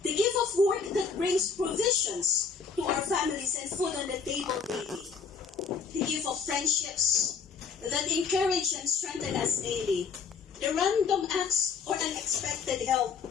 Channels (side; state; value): right; quieter; 5.7 dB